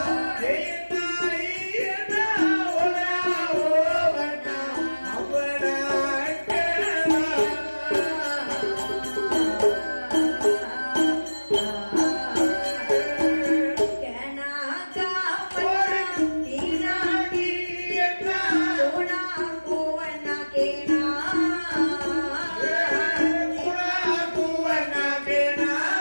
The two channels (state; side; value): inverted; both; correlation -1.00